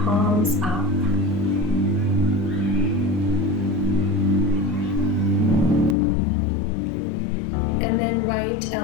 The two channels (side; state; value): right; drops out; at 6.0 s